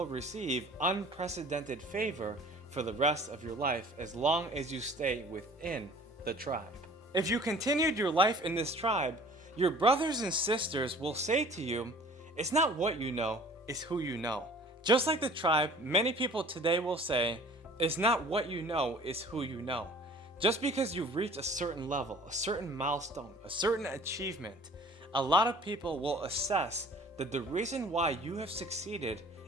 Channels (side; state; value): both; normal; correlation 0.49